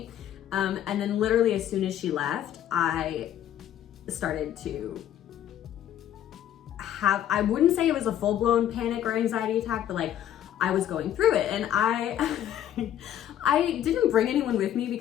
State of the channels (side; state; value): right; quieter; 11.0 dB